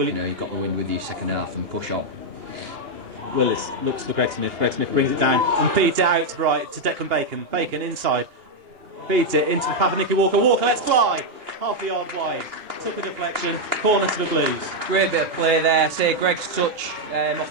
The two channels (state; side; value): late; left; 2.8 ms